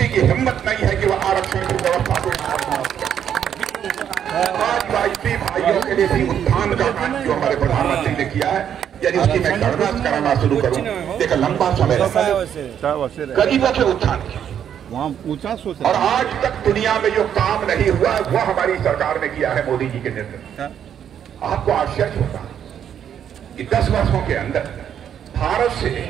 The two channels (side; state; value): left; quieter; 9.1 dB